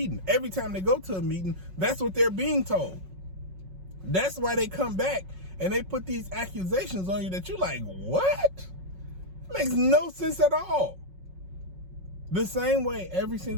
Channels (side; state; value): left; late; 5.4 ms